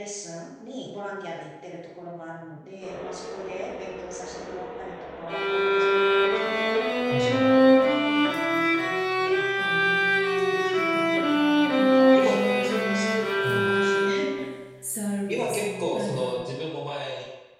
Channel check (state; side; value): identical; both; correlation 1.00